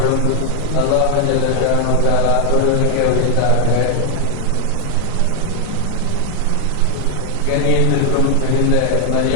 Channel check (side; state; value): both; different; correlation 0.00